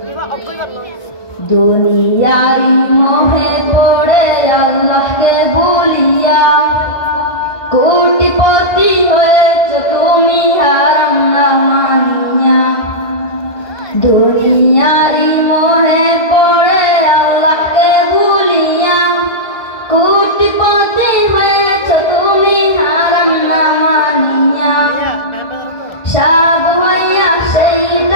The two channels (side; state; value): right; late; 1.5 ms